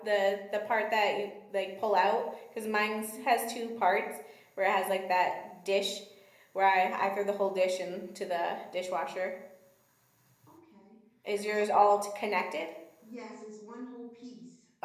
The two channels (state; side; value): identical; both; correlation 1.00